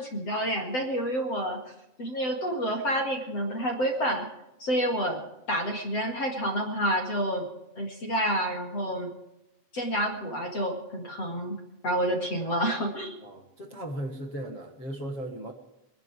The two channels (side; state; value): right; late; 7.8 ms